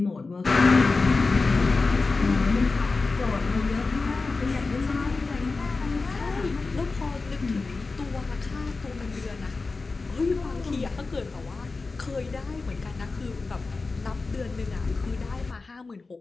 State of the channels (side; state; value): right; quieter; 3.9 dB